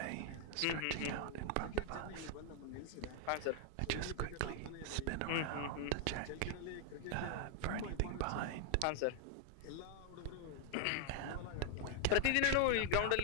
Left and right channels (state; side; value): different; both; correlation 0.00